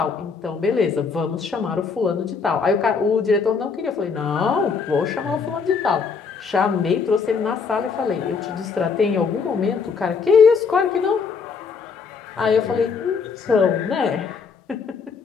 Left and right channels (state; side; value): quieter; right; 5.4 dB